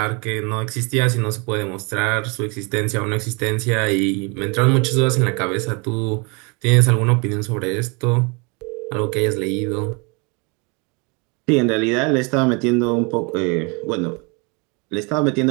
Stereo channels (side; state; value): left; quieter; 31.2 dB